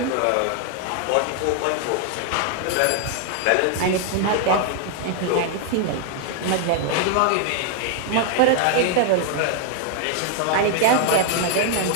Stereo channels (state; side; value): different; both; correlation 0.00